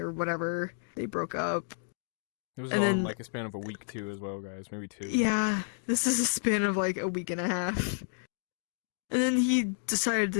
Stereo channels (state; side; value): silent; right; digital silence